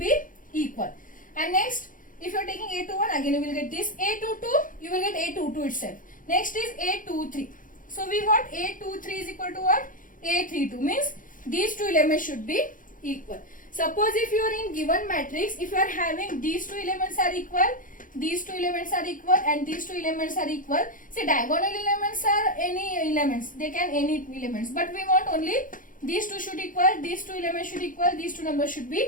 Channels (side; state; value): right; late; 0.39 ms